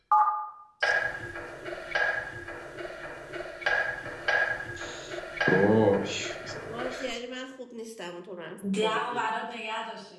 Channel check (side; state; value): both; identical; correlation 1.00